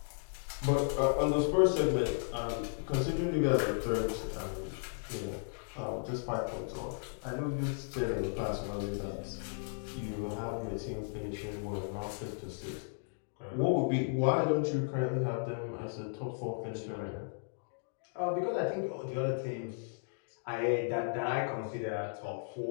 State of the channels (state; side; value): silent; right; digital silence